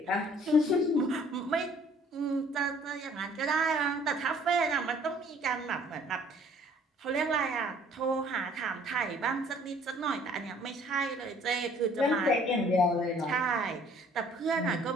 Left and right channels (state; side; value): normal; both; correlation 0.57